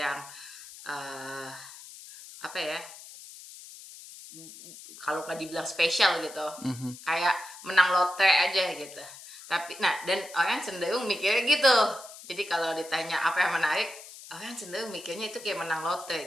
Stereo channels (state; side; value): noise; left; hiss, 16 dB below the sound